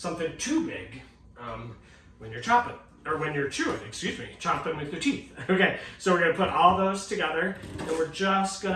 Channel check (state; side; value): identical; both; correlation 1.00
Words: too big when you're chopping, or when you're chewing, chopping with your teeth. Okay, so we're gonna put all those together, and we're just